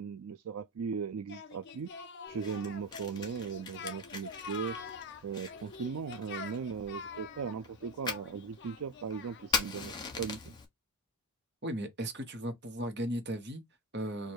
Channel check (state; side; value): normal; both; correlation 0.16